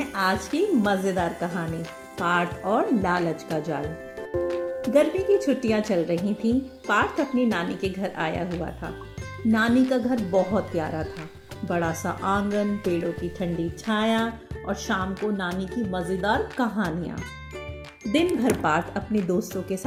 आज की मजेदार कहानी, पार्थ और लालच का जाल। गर्मी की छुट्टियां चल रही थीं। पार्थ अपनी नानी के घर आया हुआ था। नानी का घर बहुत प्यारा था। बड़ा सा आंगन, पेड़ों की ठंडी छाया और शाम को नानी की मजेदार कहानियां। दिन भर पार्थ अपने दोस्तों के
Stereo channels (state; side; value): identical; both; correlation 1.00